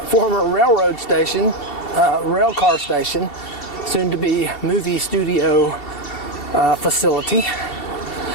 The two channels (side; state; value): right; late; 2.7 ms